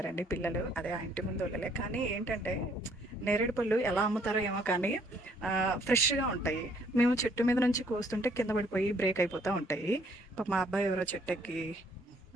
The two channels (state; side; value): normal; both; correlation 0.64